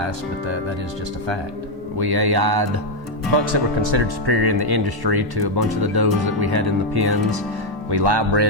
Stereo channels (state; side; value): normal; both; correlation 0.02